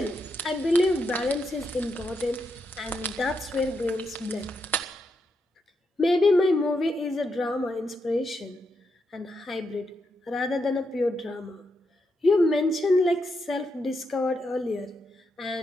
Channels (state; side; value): normal; both; correlation 0.82